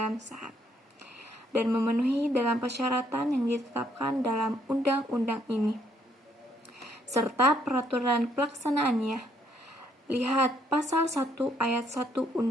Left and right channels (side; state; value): both; normal; correlation 0.70